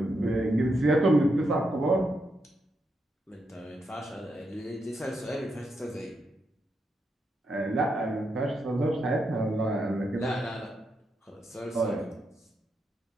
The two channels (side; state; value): both; normal; correlation 0.82